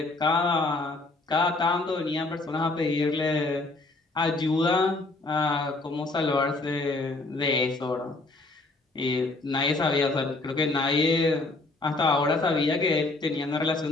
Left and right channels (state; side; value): quieter; right; 3.2 dB